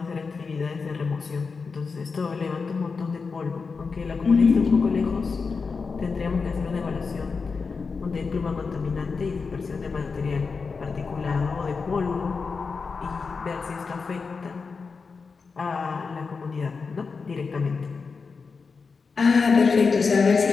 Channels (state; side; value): quieter; right; 4.9 dB